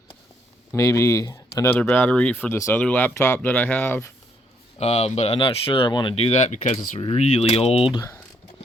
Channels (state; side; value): normal; both; correlation 0.71